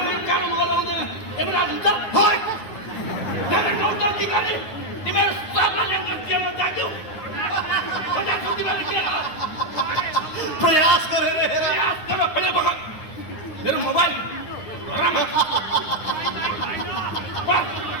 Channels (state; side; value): late; right; 9.7 ms